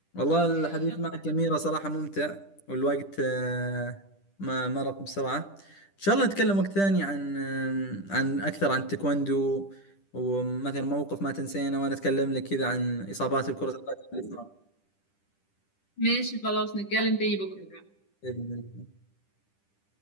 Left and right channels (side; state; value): right; late; 10 ms